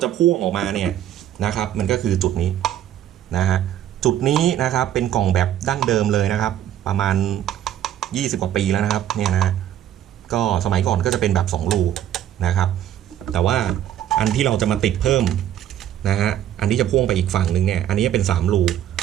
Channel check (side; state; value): left; quieter; 11.2 dB